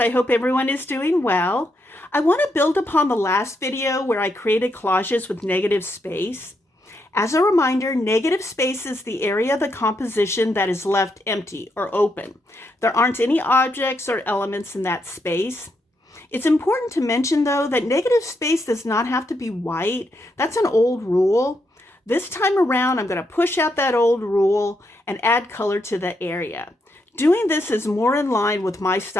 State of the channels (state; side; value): normal; both; correlation 0.80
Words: hope everyone is doing well. I want to build upon the last video where I created collages with negative space. As a reminder, negative space is the area of the composition that is left empty or open. There aren't any objects or elements in that space. It's important to mention though that negative space does not have to be white. That's an old rule. This time around, I'm going to push out that old rule and add color to the area. Doing this is more in line with my